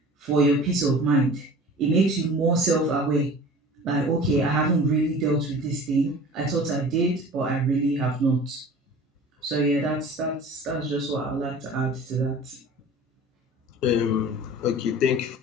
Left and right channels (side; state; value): both; normal; correlation 0.42